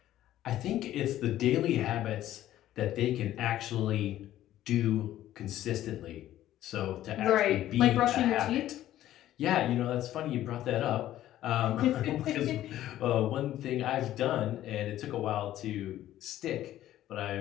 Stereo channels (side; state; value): right; quieter; 13.3 dB